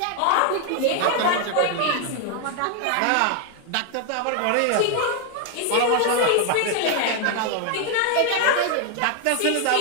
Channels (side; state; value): both; different; correlation 0.00